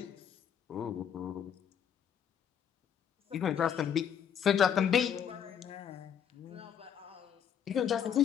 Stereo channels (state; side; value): quieter; right; 8.4 dB